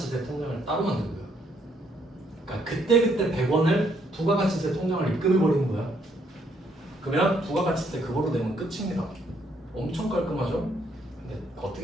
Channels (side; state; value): both; normal; correlation 0.70